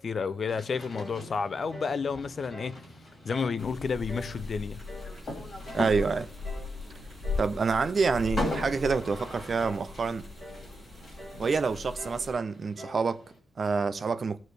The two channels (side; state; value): both; normal; correlation 0.85